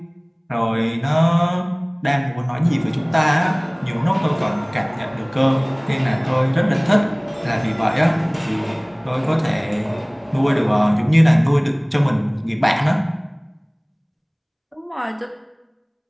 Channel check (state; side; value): identical; both; correlation 1.00